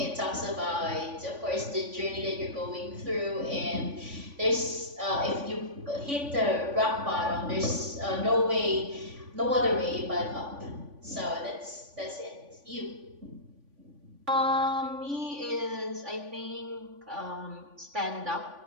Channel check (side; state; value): left; late; 3.5 ms